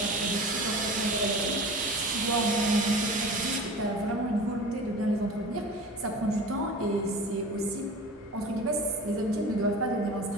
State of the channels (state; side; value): normal; both; correlation 0.37